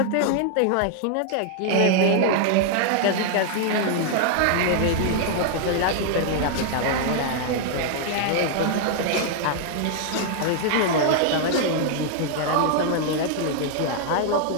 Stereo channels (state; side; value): different; both; correlation 0.00